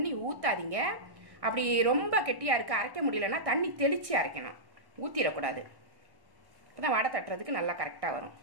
ஊற்றாதீங்க. அப்படி ரொம்ப கெட்டியாக இருக்குது, அரைக்க முடியலன்னா தண்ணி தெளித்து அரைக்கணும், ஊற்றிடக்கூடாது. இப்போ தான் வடை தட்டுறதுக்கு நல்லா கரெக்டாக வரும்.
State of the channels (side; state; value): left; late; 1.1 ms